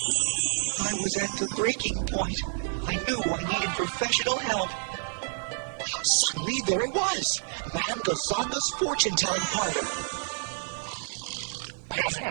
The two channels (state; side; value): silent; left; digital silence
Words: was at the breaking point. I knew I needed professional help. Suddenly, there it was. Madame Gazonga's fortune-telling parlor.